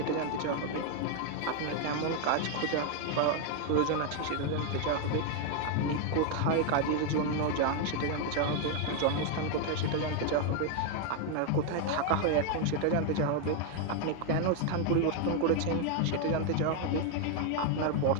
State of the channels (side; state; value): both; different; correlation 0.01